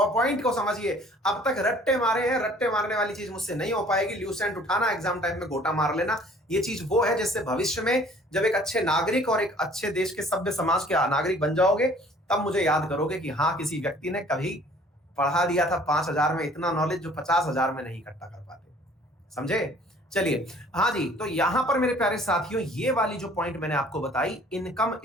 को समझिए। अब तक रट्टे मारे हैं, रट्टे मारने वाली चीज मुझसे नहीं हो पाएगी। ल्यूसेंट उठाना, एग्जाम टाइम में गोटा मार लेना, ये चीज वो है जिससे भविष्य में जब एक अच्छे नागरिक और एक अच्छे देश के सभ्य समाज के नागरिक बन जाओगे, तब मुझे याद करोगे कि हाँ, किसी व्यक्ति ने कभी पढ़ा दिया था 5,000 में इतना नॉलेज जो 50,000 में नहीं इकट्ठा कर पाते। समझे? चलिए, हाँ जी, तो यहां पर मेरे प्यारे साथियों, ये वाली जो पॉइंट मैंने आपको बताई, income,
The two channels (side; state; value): both; normal; correlation 0.54